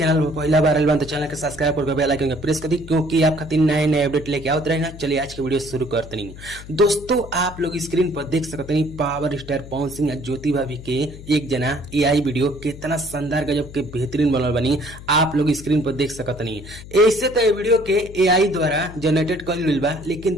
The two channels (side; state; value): left; noise; hum, 15 dB below the sound